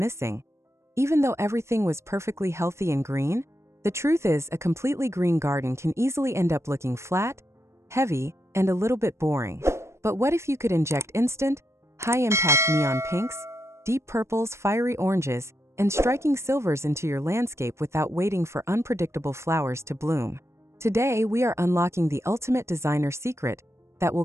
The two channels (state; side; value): late; left; 0.13 ms